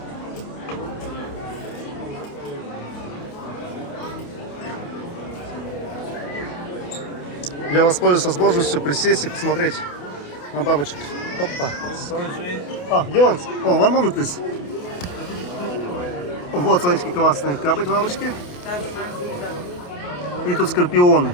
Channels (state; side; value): late; right; 28 ms